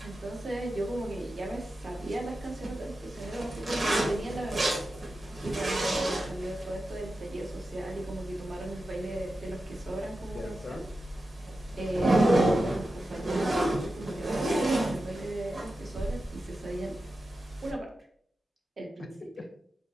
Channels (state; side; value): normal; both; correlation 0.92